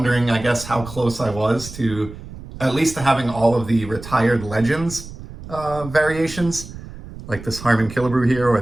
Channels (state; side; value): noise; right; rumble, 14 dB below the sound